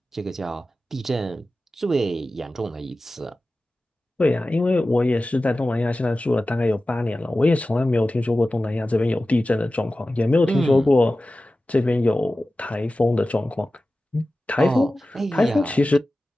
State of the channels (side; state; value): both; normal; correlation 0.95